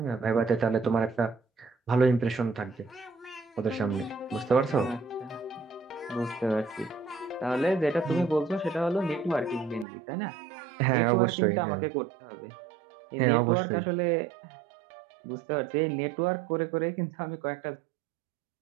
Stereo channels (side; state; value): left; drops out; at 9.9 s